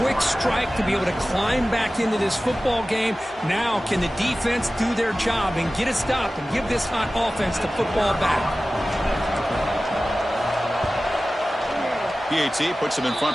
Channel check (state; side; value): normal; both; correlation 0.96